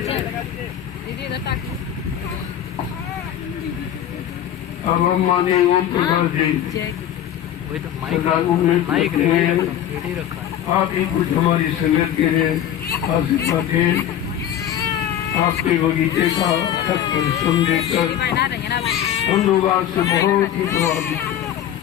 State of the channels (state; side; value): quieter; right; 10.6 dB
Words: अब हम माननीय ओम प्रकाश जी वही तो सदागुरु में माइक कहते हैं, रेडी रखा है। आप ही कुछ हमारी संगत के लिए आशीर्वाद दें। आपके बगीचे का खत परिश्रम देकर हम लोग आज से बहुत ही प्रभावित हैं।